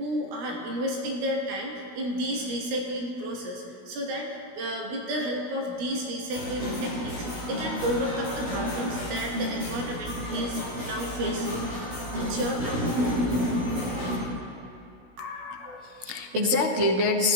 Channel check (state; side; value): late; left; 16 ms